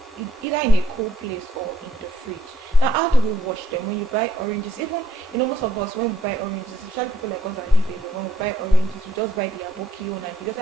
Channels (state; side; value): normal; both; correlation 0.69